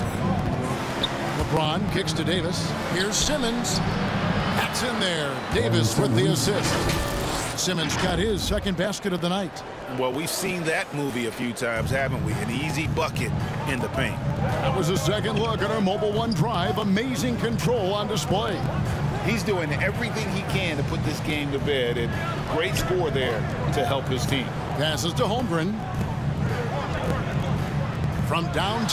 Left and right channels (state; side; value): identical; both; correlation 1.00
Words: LeBron kicks to Davis. Here's Simmons. That's in there. Davis with the assist. Simmons got his second basket of the night. Well, we've seen that movie a few times, haven't we? An easy bucket in the paint. That was a second look at our Mobile One drive. Amazing control on display. He's doing everything he can to put this game to bed, and great score there to help his team. Passes to Holmgren. From